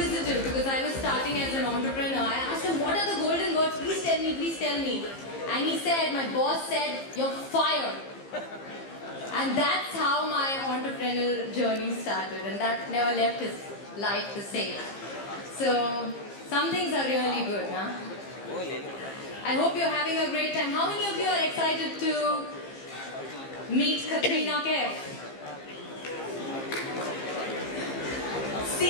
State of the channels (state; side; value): late; right; 15 ms